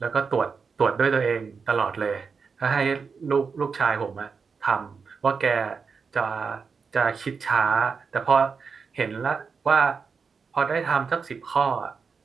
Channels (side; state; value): left; quieter; 5.4 dB